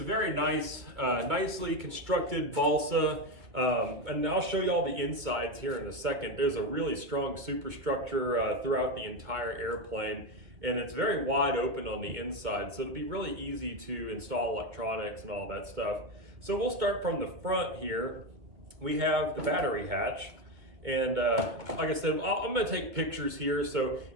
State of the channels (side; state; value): left; late; 2.5 ms